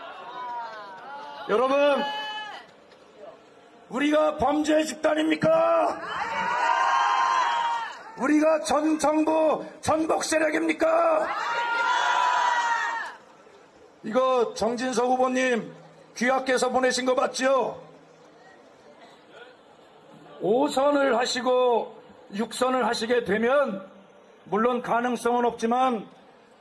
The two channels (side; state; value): both; identical; correlation 1.00